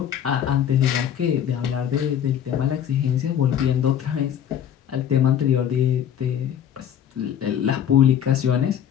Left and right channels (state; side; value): quieter; right; 9.5 dB